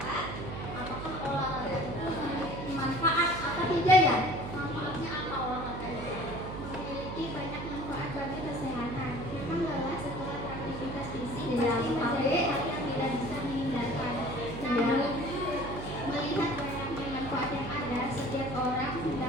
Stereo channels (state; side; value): noise; right; hum, 7 dB below the sound